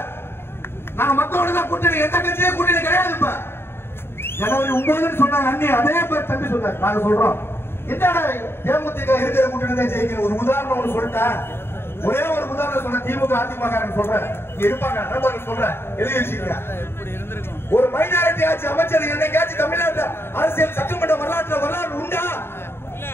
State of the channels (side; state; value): right; late; 0.11 ms